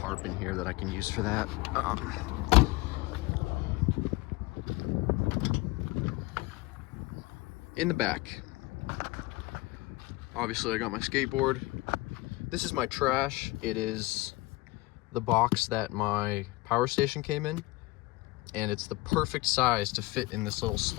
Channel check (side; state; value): right; quieter; 20.9 dB